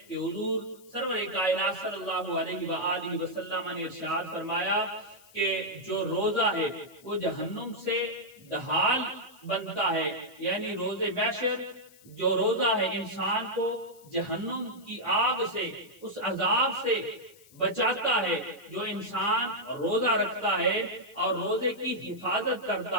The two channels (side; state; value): left; noise; hiss, 25 dB below the sound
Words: کہ حضور سرور کائنات صلی اللہ علیہ وآلہ وسلم نے ارشاد فرمایا کہ جو روزہ ہے وہ جہنم سے ڈھال بنتا ہے، یعنی روز محشر جو روزہ ہے انسان کو جہنم کی آگ سے، اس عذاب سے بچاتا ہے۔ جو انسان روزہ رکھتا ہے اور روزے کی حفاظت